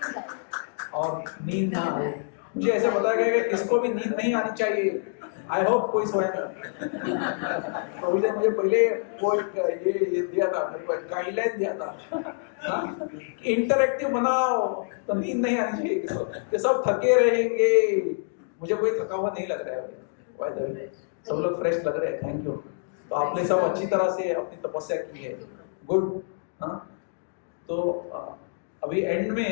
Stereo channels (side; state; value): right; silent; digital silence